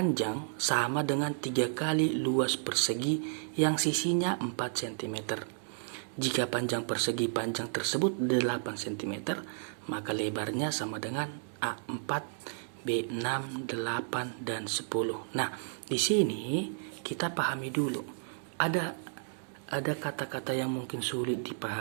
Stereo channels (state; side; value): silent; left; digital silence